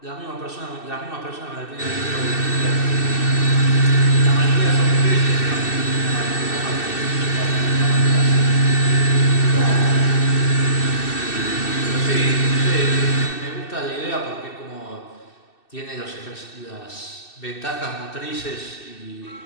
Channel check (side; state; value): right; late; 2.6 ms